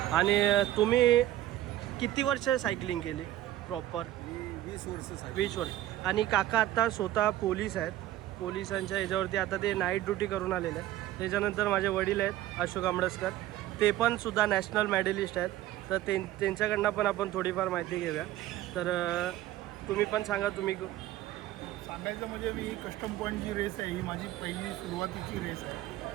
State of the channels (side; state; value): left; quieter; 14.3 dB